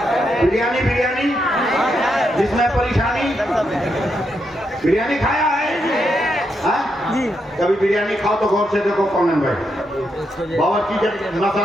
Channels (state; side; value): normal; both; correlation 0.81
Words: बिरयानी, बिरयानी जिसमें परेशानी, बिरयानी खाया है? जी। कभी बिरयानी खाओ तो गौर से देखो कौन भाई। बावर्ची जब